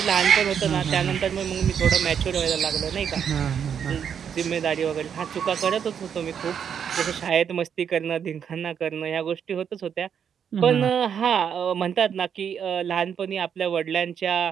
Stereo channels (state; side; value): quieter; left; 7.9 dB